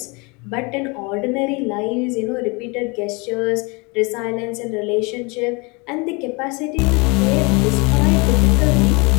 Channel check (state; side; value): quieter; right; 28.8 dB